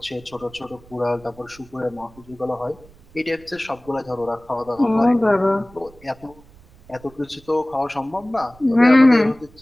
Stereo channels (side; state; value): right; noise; rumble, 24 dB below the sound